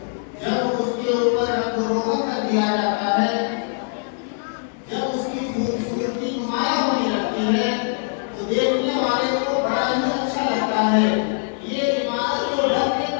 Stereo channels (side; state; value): right; silent; 60 dB below the other